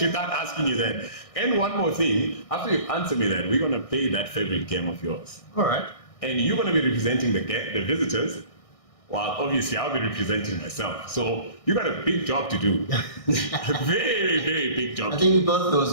without asking you that. And one more thing, after you answer me that, we're gonna play that favorite game of yours, All right. and you're gonna be representing the visitors. While obviously I'll be representing myself. So you got a big job to do. A very, very big job. I think we both those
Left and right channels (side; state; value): right; late; 1.6 ms